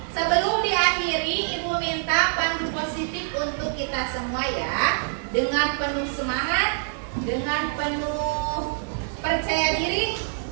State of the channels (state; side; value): silent; left; digital silence